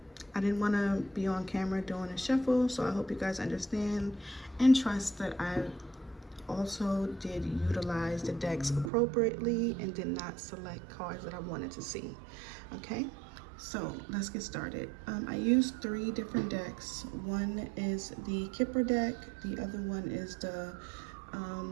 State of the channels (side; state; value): left; drops out; at 8.9 s